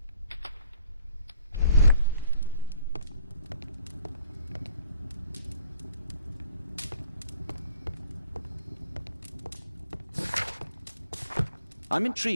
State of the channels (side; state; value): both; inverted; correlation -0.57